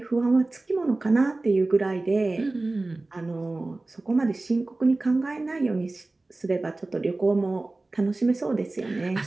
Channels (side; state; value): left; quieter; 3.1 dB